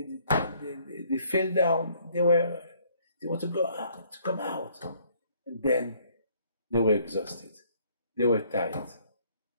fell down. They want to go out, to come out, and then they were exhausted. They were tired.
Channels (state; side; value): inverted; both; correlation -0.63